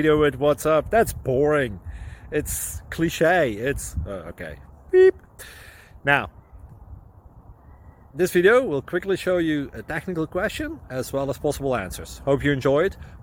with what's up. That's boring. It's cliche. It's okay. Beep. Now, this video will quickly show you a technical question as well as possible answers. Hope you enjoyed.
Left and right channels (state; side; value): identical; both; correlation 1.00